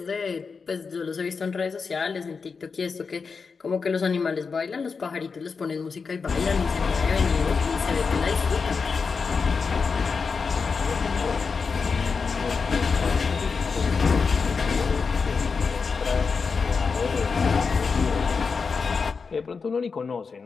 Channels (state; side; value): quieter; right; 5.1 dB